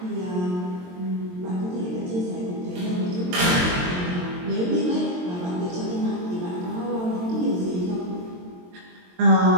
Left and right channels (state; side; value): late; left; 22 ms